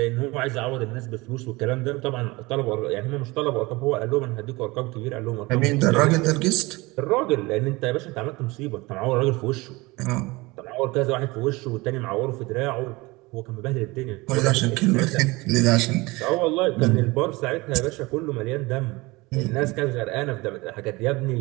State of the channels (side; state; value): left; quieter; 22.9 dB